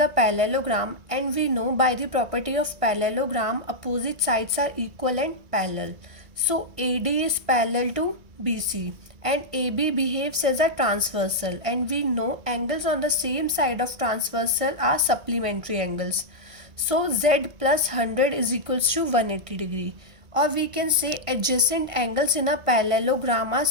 parallelogram and we know by the property of parallelogram opposite sides are equal and parallel. So AD is parallel to BC and AB behaves as a transversal, and we know angles on the same side of transversal are supplementary angles. So Z plus 100 is equals to 180 degree, or we can say adjacent angles in a parallelogram are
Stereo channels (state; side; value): late; left; 1.5 ms